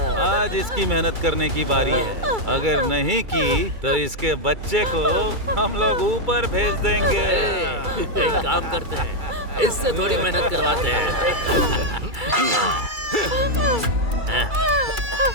आज इसकी मेहनत करने की बारी है। अगर नहीं की तो इसके बच्चे को हम लोग ऊपर भेज देंगे। एक काम करते हैं, इससे थोड़ी मेहनत करवाते हैं।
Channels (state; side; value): late; left; 2.3 ms